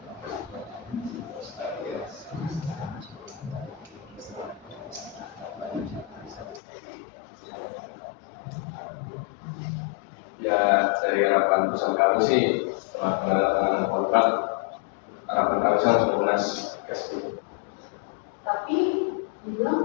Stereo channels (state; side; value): drops out; right; at 6.6 s